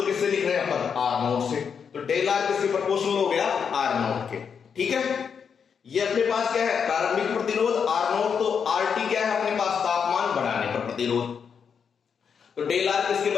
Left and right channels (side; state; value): right; quieter; 6.7 dB